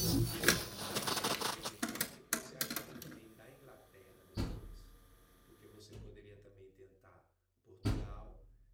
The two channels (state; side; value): identical; both; correlation 1.00